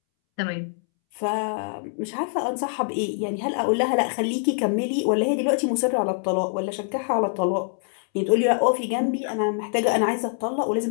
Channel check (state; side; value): silent; right; 62 dB below the other